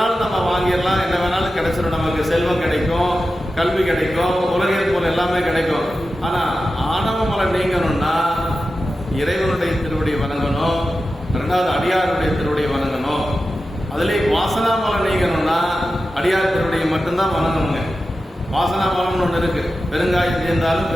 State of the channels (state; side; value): normal; both; correlation 0.92